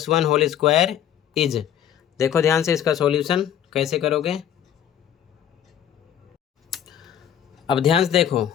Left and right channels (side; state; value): right; quieter; 9.9 dB